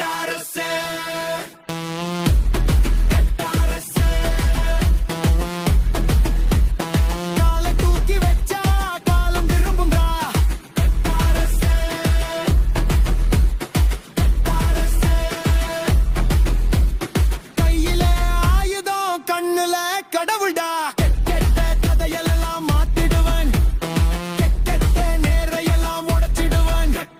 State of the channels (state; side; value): identical; both; correlation 1.00